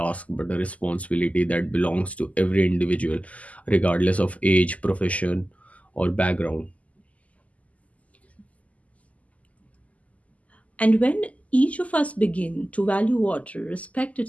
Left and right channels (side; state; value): right; late; 0.071 ms